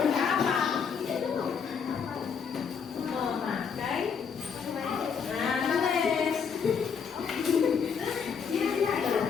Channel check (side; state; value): right; quieter; 6.5 dB